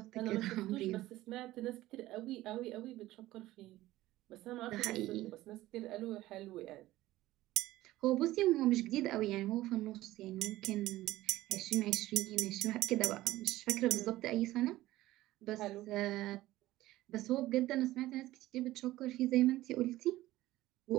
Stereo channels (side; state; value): left; quieter; 16.4 dB